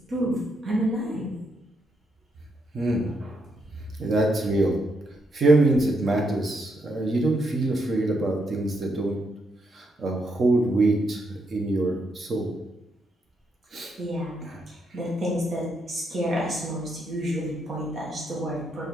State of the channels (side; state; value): both; normal; correlation 0.79